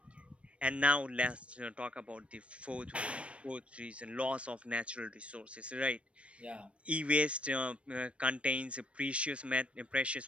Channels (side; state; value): left; late; 0.061 ms